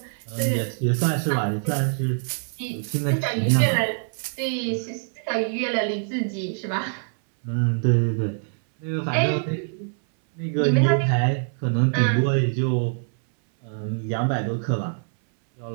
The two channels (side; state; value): left; silent; 62 dB below the other